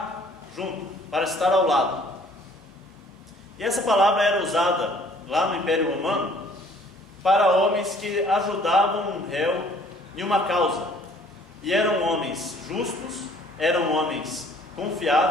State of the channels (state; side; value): normal; both; correlation 0.57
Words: junto, para estar ao lado. E essa palavra era usada lá no Império Romano para homens que ajudavam um réu em uma causa. E eram homens justos, eram homens